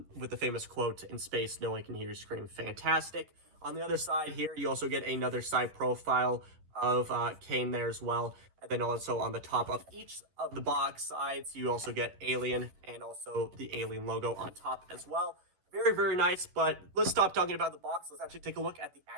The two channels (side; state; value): left; late; 11 ms